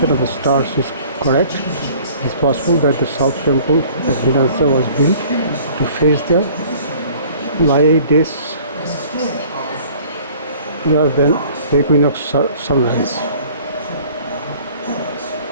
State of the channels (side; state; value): both; inverted; correlation -0.51